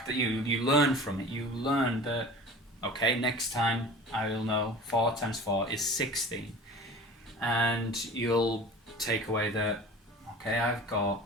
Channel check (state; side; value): normal; both; correlation 0.39